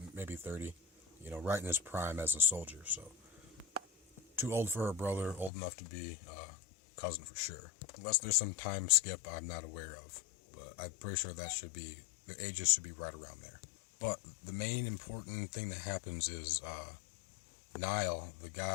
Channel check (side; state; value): right; drops out; at 5.5 s